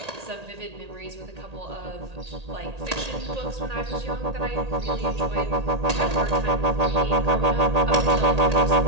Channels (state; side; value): late; left; 1.8 ms